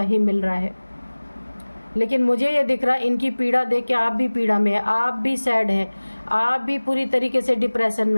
ही मिल रहा है। लेकिन मुझे ये दिख रहा है, इनकी पीड़ा देख के आप भी पीड़ा में हैं, आप भी सैड हैं, आप भी पूरी तरीके से डिप्रेशन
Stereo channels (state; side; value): inverted; both; correlation -1.00